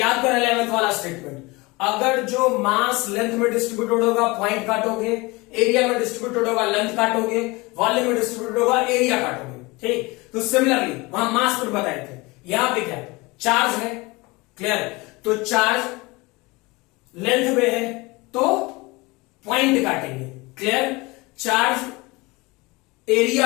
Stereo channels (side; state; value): right; quieter; 24.0 dB